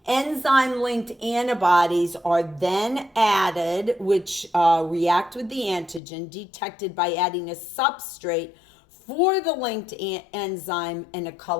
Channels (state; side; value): drops out; right; at 6.0 s